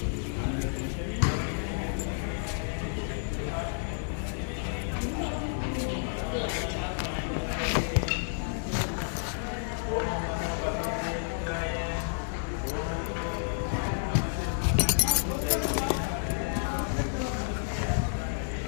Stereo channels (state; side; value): silent; right; digital silence